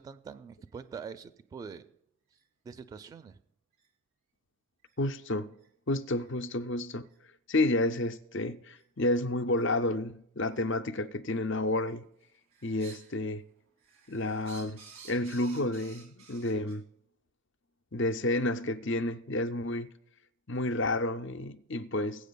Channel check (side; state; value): both; normal; correlation 0.16